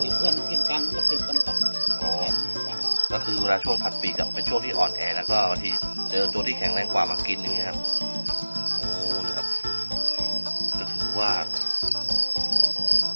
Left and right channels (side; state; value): both; inverted; correlation -1.00